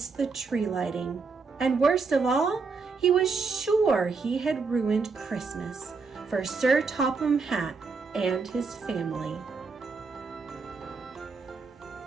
the tree lighting, and worst of all, he was sure he had ruined Christmas for Sir Topham Hatt and his family.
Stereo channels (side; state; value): left; quieter; 4.6 dB